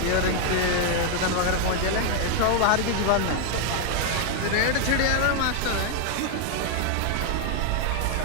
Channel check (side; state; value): both; different; correlation 0.00